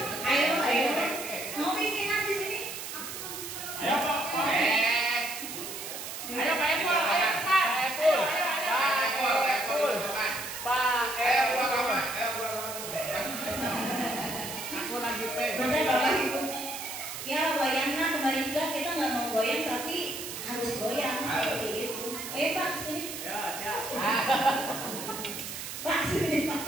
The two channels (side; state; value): right; noise; hiss, 8 dB below the sound